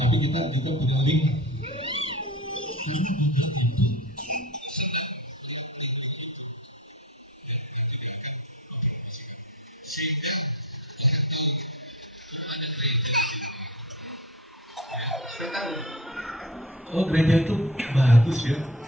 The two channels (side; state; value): both; normal; correlation 0.35